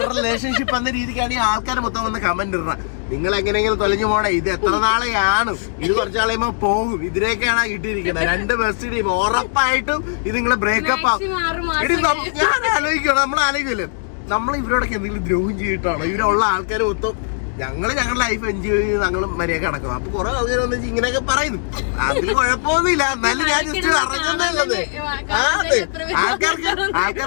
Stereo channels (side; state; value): right; silent; digital silence